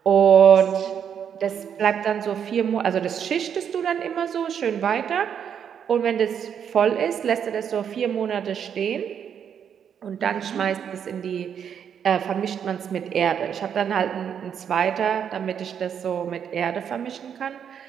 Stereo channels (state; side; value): quieter; left; 8.1 dB